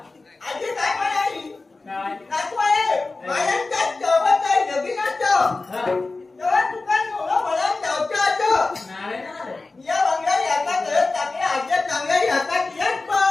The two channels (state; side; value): quieter; right; 3.5 dB